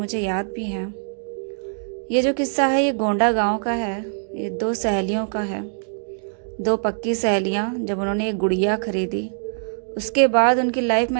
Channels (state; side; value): silent; left; digital silence